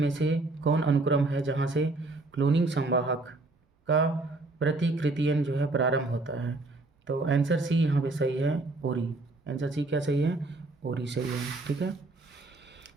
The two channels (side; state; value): left; quieter; 3.1 dB